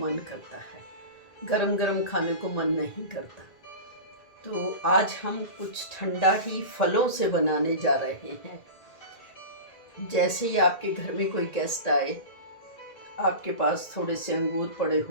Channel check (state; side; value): late; right; 2.0 ms